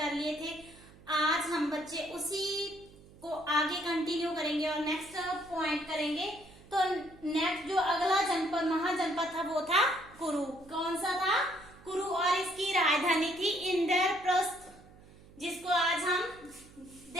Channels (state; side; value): noise; right; hum, 23 dB below the sound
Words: लिए थे। आज हम बच्चे उसी को आगे कंटिन्यू करेंगे और नेक्स्ट पॉइंट करेंगे। तो नेक्स्ट जो अगला जनपद महाजनपद था वो था कुरु। कौन सा था? कुरु। और इसकी राजधानी थी इंद्रप्रस्थ, जिसको आज हम